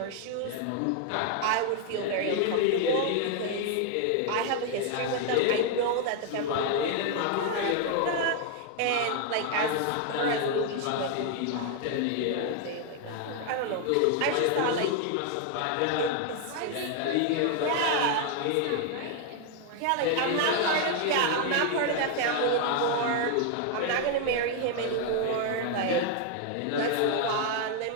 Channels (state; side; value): different; both; correlation 0.00